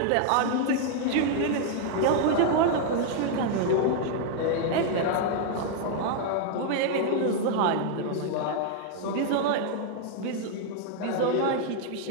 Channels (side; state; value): both; different; correlation 0.00